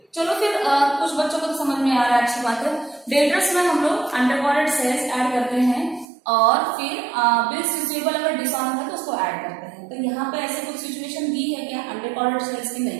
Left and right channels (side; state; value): left; drops out; at 6.1 s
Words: चलो फिर कुछ बच्चों को तो समझ में आ रहा है, अच्छी बात है। डेटर्स में हम लोग अंडरकॉर्डेड सेल्स ऐड करते हैं, और फिर बिल्स रिसीवेबल अगर डिसऑन है तो उसको ऐड करते हैं। तो यहाँ पे ऐसे कुछ सिचुएशन दी है क्या अंडरकॉर्डेड सेल्स की? नहीं,